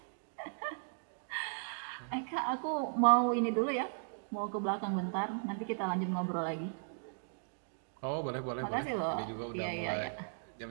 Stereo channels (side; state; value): left; silent; digital silence